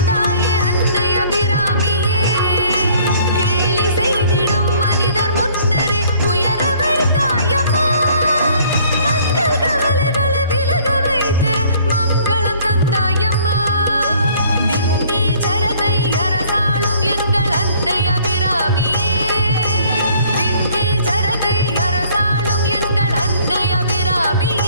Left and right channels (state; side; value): inverted; both; correlation -0.58